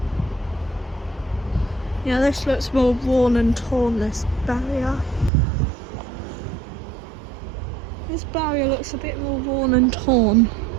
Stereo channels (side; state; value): left; drops out; at 5.3 s